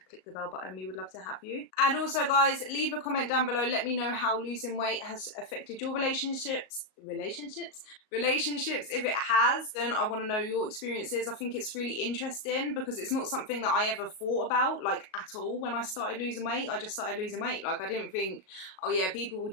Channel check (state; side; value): late; right; 37 ms